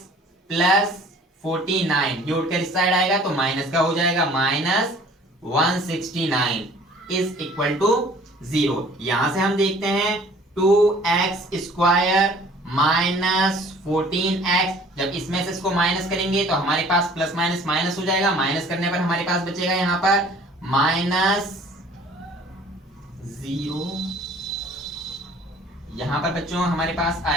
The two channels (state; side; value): normal; both; correlation 0.52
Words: plus 49, ये उठकर इस साइड आएगा तो माइनस का हो जाएगा, माइनस 169 इज इक्वल टू 0। यहां से हम देखते हैं 2x स्क्वायर माइनस 14x, जब इसमें से इसको माइनस करेंगे तो हमारे पास प्लस माइनस माइनस हो जाएगा। माइनस करने पर हमारे पास बचेगा यहां पर माइनस 0। यहां पर बच्चों हमारे पास